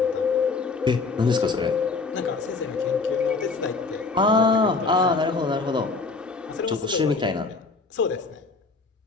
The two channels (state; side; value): quieter; right; 4.1 dB